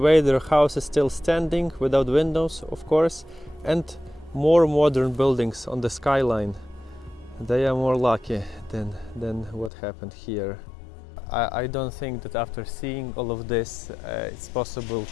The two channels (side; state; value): right; drops out; at 9.7 s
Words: their house is still standing without windows, of course, and more modern buildings on the skyline. They are more lucky than what happened here. I don't think that after seeing all of this it's possible